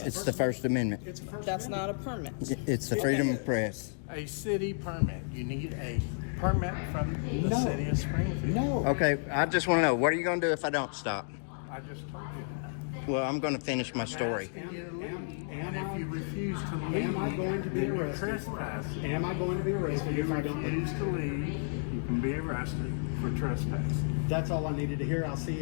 it's us. the First Amendment. It's a first That's Amendment. not a permit. It's the freedom of press. A city permit. You need a permit from the No. city of Springfield. No. Okay, I just want to know, what are you going to do if I don't stop? I just told you. Well, I'm going to finish my story. And if you refuse to leave, Am I going to be then you're arrested? trespassing. Am I going to be arrested If if you I don't leave? refuse to leave, you can be arrested for trespassing. That's all I needed to hear. I'll see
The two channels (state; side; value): silent; right; digital silence